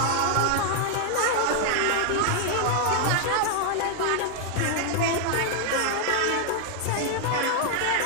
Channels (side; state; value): both; different; correlation 0.00